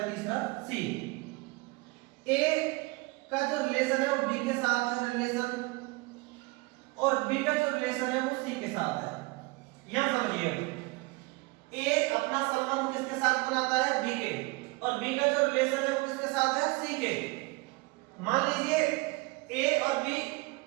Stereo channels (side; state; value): left; quieter; 25.3 dB